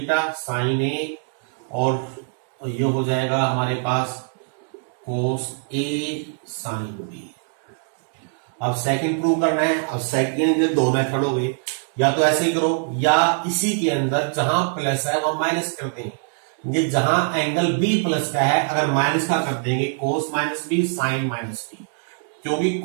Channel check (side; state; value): left; silent; 59 dB below the other